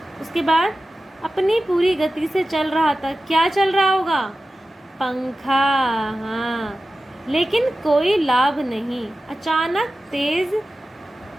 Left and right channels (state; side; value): normal; both; correlation 0.94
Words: उसके बाद अपनी पूरी गति से चल रहा था, क्या चल रहा होगा, पंखा, हाँ, लेकिन कोई लाभ नहीं। अचानक तेज